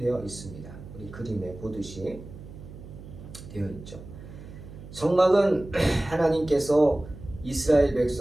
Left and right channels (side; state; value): right; noise; hum, 15 dB below the sound